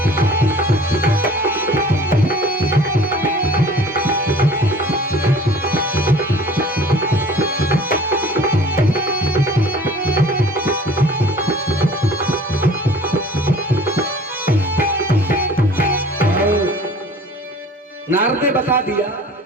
नारद ने बता दिया,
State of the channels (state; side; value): normal; both; correlation 0.47